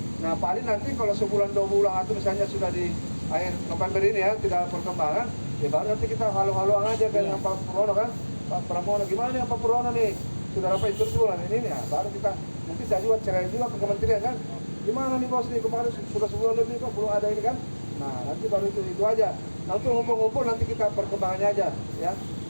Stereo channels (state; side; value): inverted; both; correlation -1.00